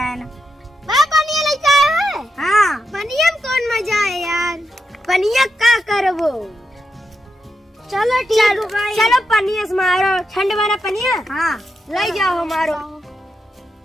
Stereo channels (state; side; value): normal; both; correlation 0.85